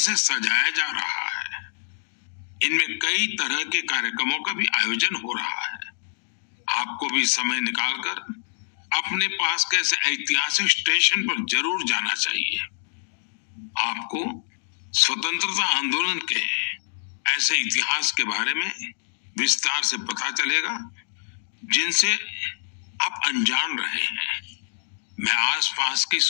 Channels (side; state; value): right; silent; digital silence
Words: सजाया जा रहा है। इनमें कई तरह के कार्यक्रमों का भी आयोजन हो रहा है। आपको भी समय निकालकर अपने पास के ऐसे ऐतिहासिक स्टेशन पर जरूर जाना चाहिए। आपको स्वतंत्रता आंदोलन के ऐसे इतिहास के बारे में विस्तार से पता चलेगा जिनसे आप अनजान रहे हैं। मैं आसपास के